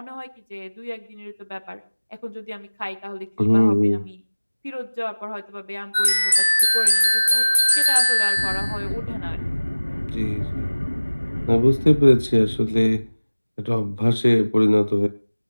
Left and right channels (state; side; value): inverted; both; correlation -1.00